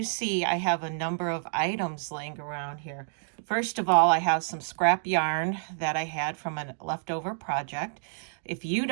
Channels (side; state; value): left; silent; digital silence